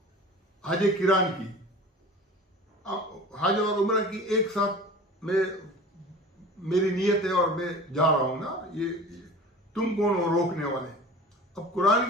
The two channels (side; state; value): both; normal; correlation 0.39